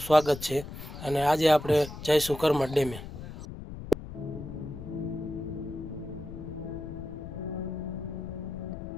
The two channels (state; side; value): noise; left; rumble, 11 dB below the sound